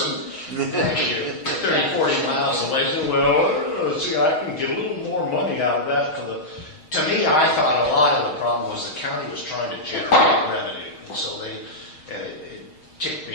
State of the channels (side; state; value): right; late; 6.4 ms